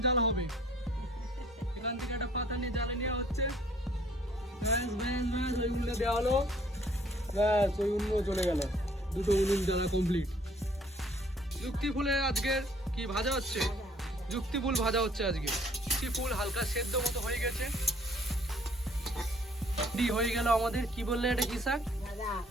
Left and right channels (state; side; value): normal; both; correlation 0.59